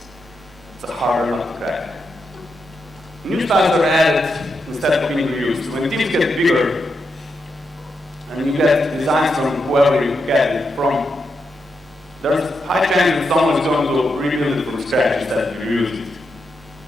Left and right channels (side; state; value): both; normal; correlation 0.85